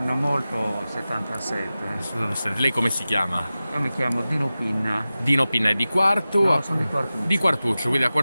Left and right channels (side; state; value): both; inverted; correlation -0.95